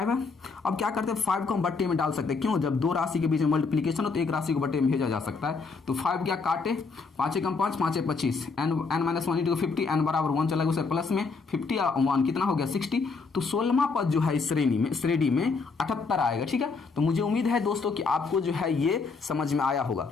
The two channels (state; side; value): quieter; right; 4.5 dB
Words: है। अब क्या करते हैं, 5 को हम बट्टे में डाल सकते हैं, क्यों, जब दो राशि के बीच में मल्टीप्लीकेशन हो तो एक राशि को बट्टे में भेजा जा सकता है। तो 5 क्या काटे, 5 1 5, 5 25, n-1 इंटू 50, n बराबर 1 चला गया उसे प्लस में 50 और 1 कितना हो गया 60। तो 16वां पद जो है इस श्रेणी में 78 आएगा, ठीक है। तो मुझे उम्मीद है दोस्तों कि आपको जो है ये समझ में आया होगा।